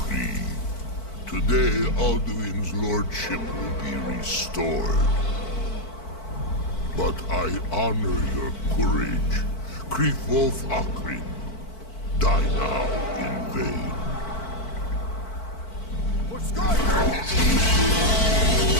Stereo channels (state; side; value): late; right; 4.5 ms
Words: Today, Alduin's lordship will be restored. But I honor your courage. Krifwolf Akrin. Die now in vain. For Skyrim!